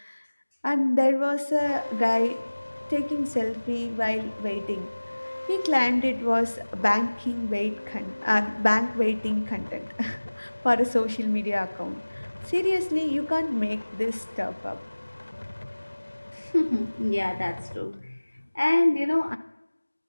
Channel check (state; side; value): inverted; both; correlation -1.00